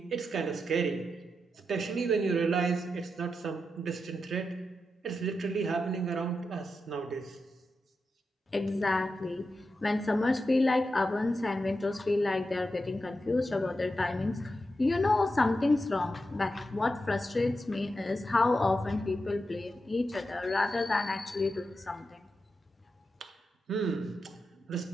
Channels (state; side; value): normal; both; correlation 0.88